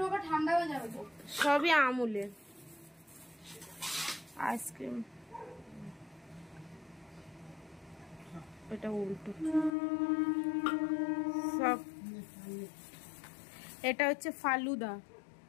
ঠান্ডা হয়ে যাবে তো। সবই আমুলের। আইসক্রিম, এটা উল্টো সব। এটা হচ্ছে ফালুদা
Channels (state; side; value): drops out; right; at 9.8 s